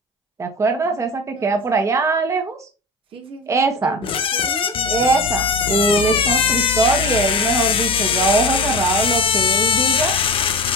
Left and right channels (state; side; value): normal; both; correlation 0.29